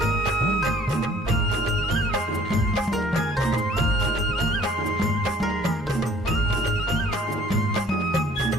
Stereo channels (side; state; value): both; normal; correlation 0.56